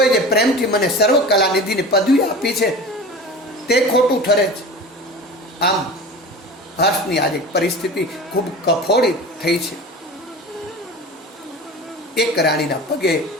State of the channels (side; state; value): both; normal; correlation 0.34